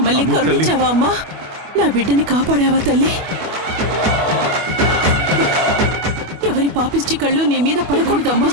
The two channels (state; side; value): late; left; 25 ms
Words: అమ్మో తల్లి. కరుణించావా అమ్మా? నా బిడ్డని కాపాడావా తల్లి? ఎవరి పాపిష్టి కళ్ళు నీ మీద పడకూడదమ్మా.